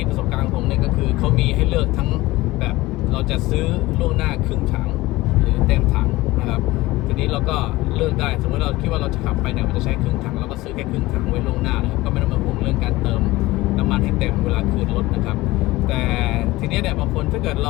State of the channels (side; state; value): right; quieter; 19.2 dB